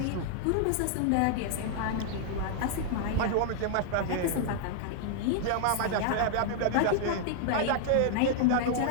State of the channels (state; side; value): different; both; correlation -0.01